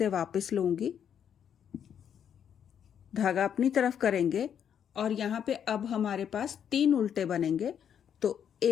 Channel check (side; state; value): right; quieter; 8.6 dB